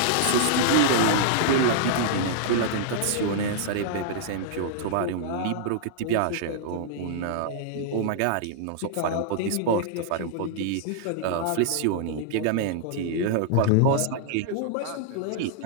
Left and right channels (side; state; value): both; different; correlation -0.01